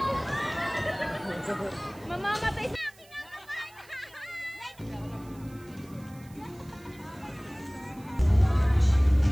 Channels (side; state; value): right; noise; hiss, 25 dB below the sound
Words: mamamatay sa akin ang